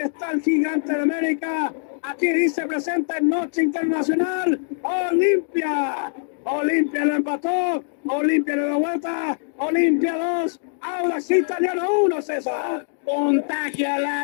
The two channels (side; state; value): right; silent; digital silence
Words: el gigante de América. Aquí dice presenta en Noche Internacional. Olimpia. Olimpia lo empató. Olimpia le dio vuelta. Olimpia 2. Audax Italiano 1, César. Contagia la